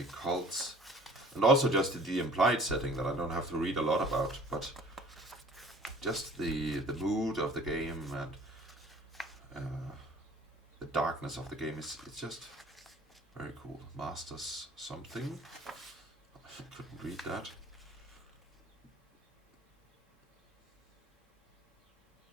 cults. And also just the implied setting that I don't have to read a lot about, but just the mood of the game and the darkness of the game it's just very cool. Masters something. I couldn't read that.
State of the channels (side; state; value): both; normal; correlation 0.50